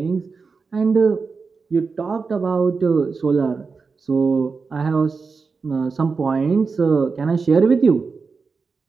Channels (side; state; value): left; quieter; 4.8 dB